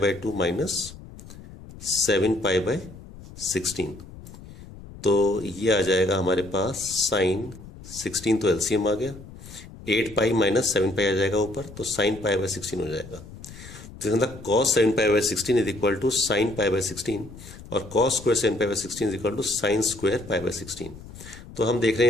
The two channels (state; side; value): noise; left; rumble, 16 dB below the sound